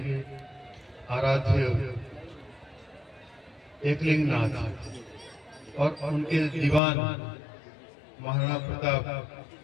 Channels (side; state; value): right; drops out; at 6.8 s